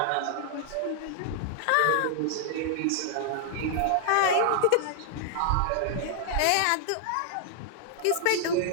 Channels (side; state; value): both; different; correlation -0.01